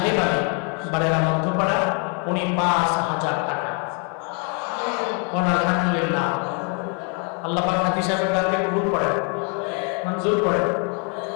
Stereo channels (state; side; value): quieter; right; 37.6 dB